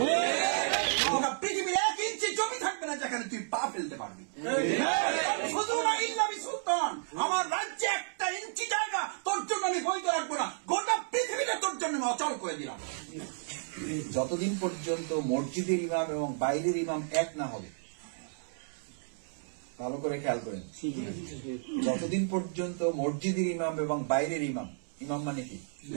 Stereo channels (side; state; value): left; silent; 56 dB below the other